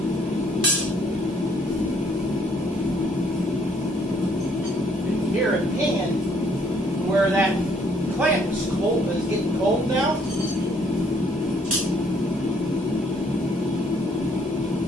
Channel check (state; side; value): normal; both; correlation 0.65